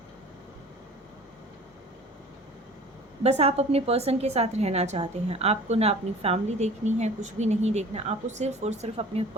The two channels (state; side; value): normal; both; correlation 0.44